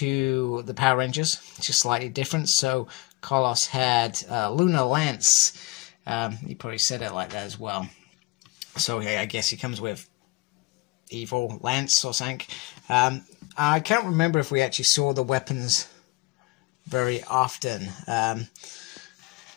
the Power Rangers, just slightly different. So Carlos had Lunar Lance. He probably said it like that as well. So yeah, I guess he comes with Evil Lance or something. I can't remember if we actually saw the weapons very often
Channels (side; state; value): right; quieter; 23.2 dB